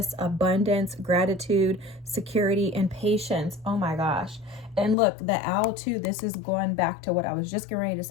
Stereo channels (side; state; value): right; drops out; at 5.0 s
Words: abundance, gratitude, security, and patience. Oh my gosh. And look, the owl too, this is going back to what I was just getting ready to